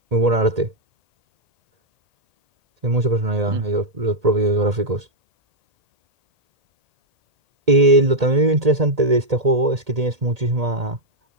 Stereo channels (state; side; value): late; left; 1.8 ms